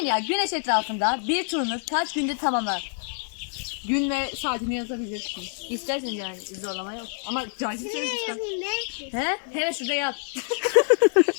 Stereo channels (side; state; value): right; silent; 61 dB below the other